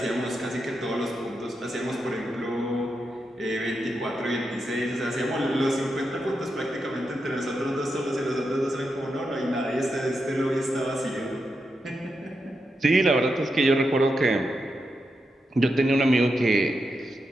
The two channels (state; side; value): normal; both; correlation 0.86